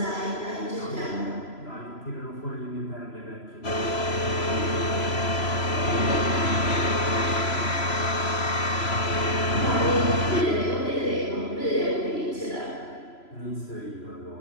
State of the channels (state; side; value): late; right; 3.0 ms